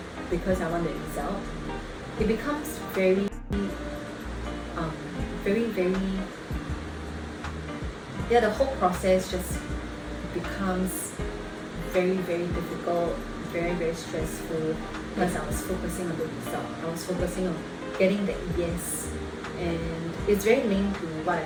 because I want the result, it becomes very, very, the whole process just becomes very, very difficult, very, very stressful, because I was focusing on the result. I was focusing on getting that yes. And it's very linked to what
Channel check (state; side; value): identical; both; correlation 1.00